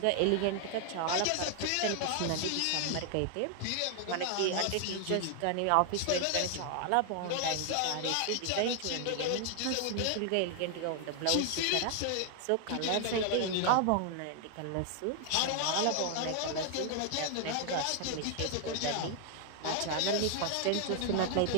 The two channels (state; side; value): different; both; correlation 0.00